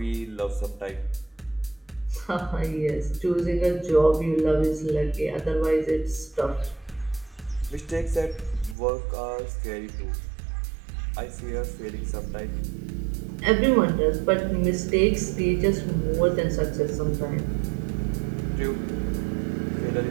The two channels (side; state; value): left; drops out; at 8.8 s